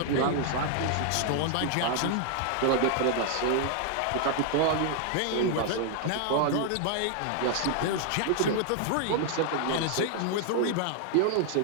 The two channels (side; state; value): both; different; correlation 0.00